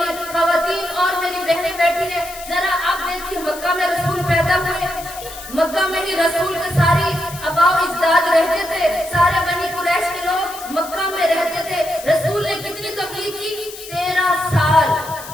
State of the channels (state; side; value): noise; left; hiss, 14 dB below the sound